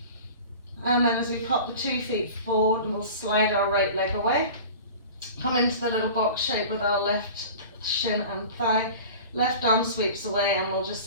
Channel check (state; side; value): inverted; both; correlation -0.38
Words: And then as we pop the 2 feet forward, we'll slide our right leg away. Come into the little box shape with our left shin and thigh. Left arm sweeps away and we'll just